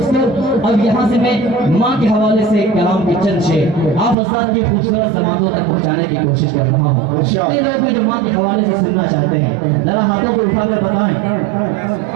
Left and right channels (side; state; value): left; drops out; at 4.2 s